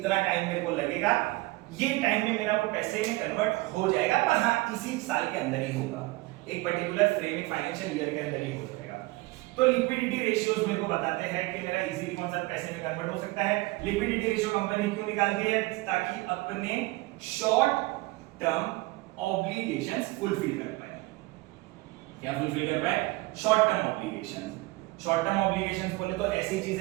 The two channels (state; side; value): quieter; left; 21.5 dB